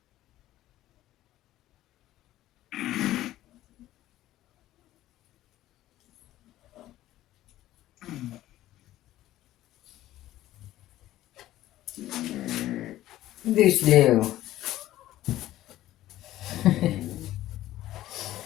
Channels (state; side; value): quieter; right; 14.6 dB